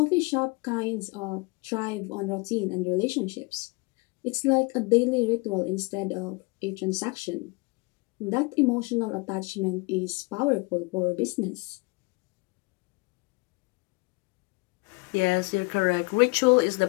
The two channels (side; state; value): right; quieter; 27.0 dB